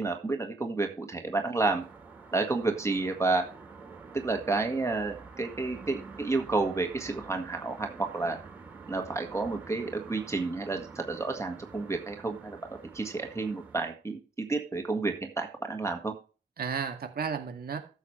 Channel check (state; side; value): quieter; left; 3.1 dB